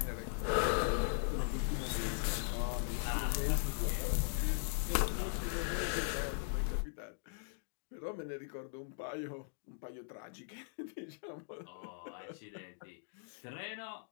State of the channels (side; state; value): right; silent; digital silence